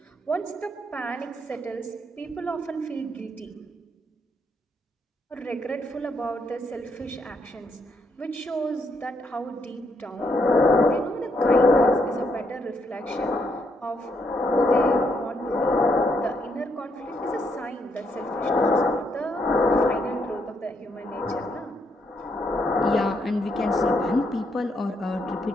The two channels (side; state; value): both; normal; correlation 0.76